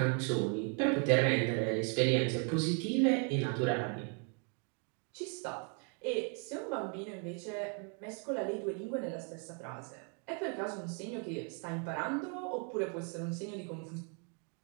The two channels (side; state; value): left; quieter; 37.7 dB